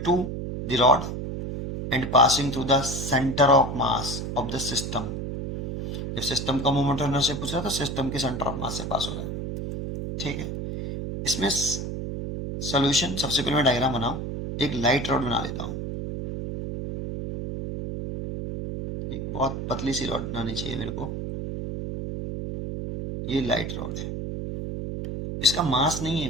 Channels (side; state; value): right; noise; hum, 5 dB below the sound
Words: the rod and passing through the center of mass of the system। जब system का moment of inertia पूछ रहा है तो सिस्टम के सेंटर ऑफ मास से पास हो रहा है। ठीक है, इसमें सोल्यूशन सबसे पहले मैं डायग्राम बनाऊं। एक लाइट रॉड बना लेता हूं। एक बहुत पतली सी रॉड बनानी चाहिए मेरे को। ये लाइट रॉड है, इसका मास नहीं है